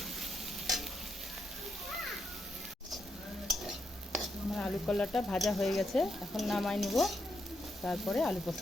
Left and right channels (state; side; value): normal; both; correlation 0.81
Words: আমার আলু কলাটা ভাজা হয়ে গেছে, এখন নামাই নিব, তারপরে আলু